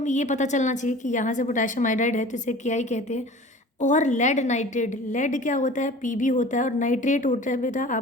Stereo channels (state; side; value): normal; both; correlation 0.42